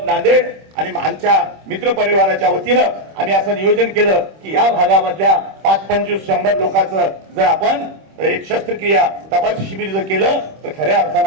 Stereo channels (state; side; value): late; left; 26 ms